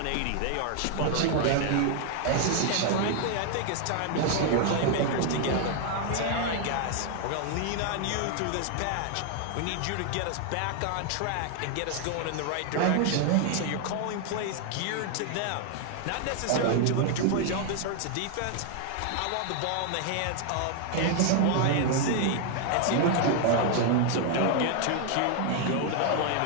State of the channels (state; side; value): different; both; correlation 0.00